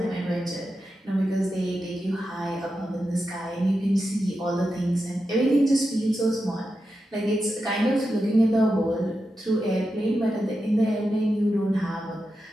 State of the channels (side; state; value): both; normal; correlation 0.89